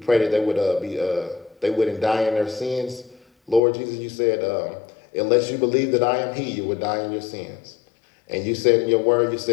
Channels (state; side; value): drops out; right; at 3.6 s